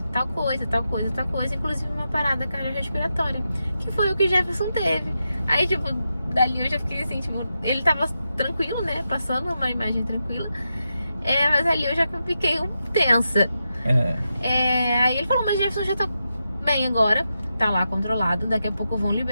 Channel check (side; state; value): both; inverted; correlation -0.88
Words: tal coisa, inclusive uma parada cardiorrespiratória, que foi o que o Jefferson teve. Aí, tipo, dali eu já fiquei assim, tipo, ele tava tranquilo, né? Passando uma imagem tranquila. Mas ali eu já fiquei tensa. Aí ele falou, mas Jefferson já tá bem agora, tá lá controlado, daqui a pouco vão